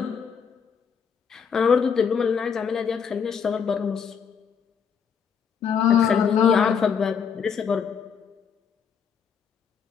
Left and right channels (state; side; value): quieter; right; 6.8 dB